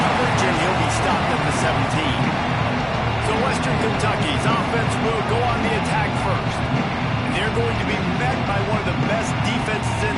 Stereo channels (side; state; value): both; identical; correlation 1.00